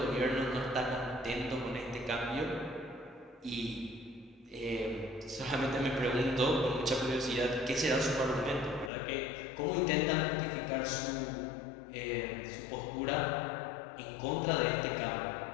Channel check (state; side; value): drops out; right; at 8.9 s